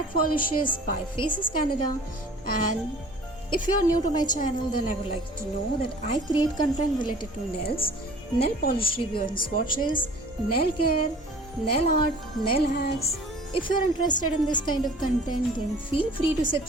polishes by Faces Canada, and if you are new to my channel, then I would like to know that I create content related to nails, nail polish review and swatches, nail care, nail art, nail hacks. If you are interested in this kind of content, then feel free to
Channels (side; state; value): both; normal; correlation 0.47